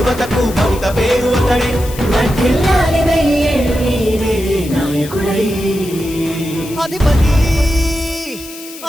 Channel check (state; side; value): noise; left; hiss, 15 dB below the sound